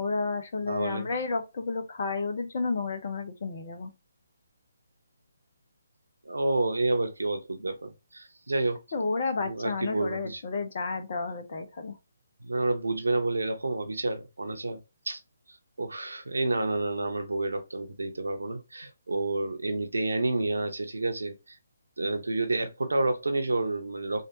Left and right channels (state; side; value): inverted; both; correlation -0.87